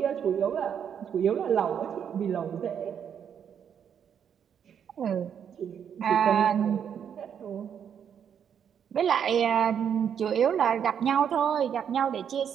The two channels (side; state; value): left; quieter; 8.2 dB